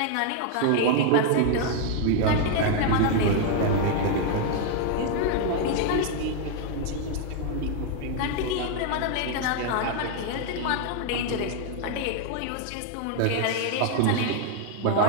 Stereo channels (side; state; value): both; different; correlation 0.00